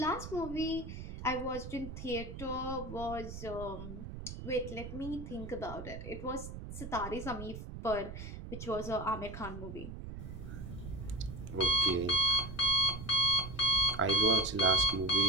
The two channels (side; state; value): right; noise; rumble, 9 dB below the sound